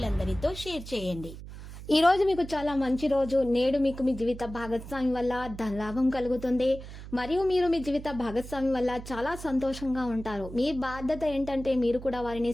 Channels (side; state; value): right; noise; hum, 13 dB below the sound